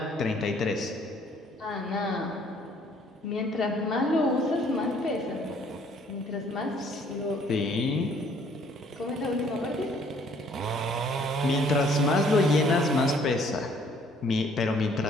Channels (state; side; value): normal; both; correlation 0.61